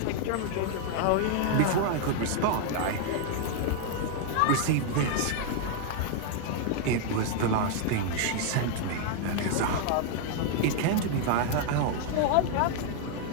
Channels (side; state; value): both; different; correlation 0.00